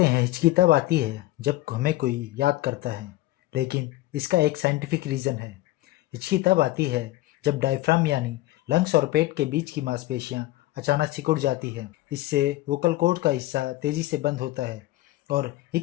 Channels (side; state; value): right; quieter; 17.2 dB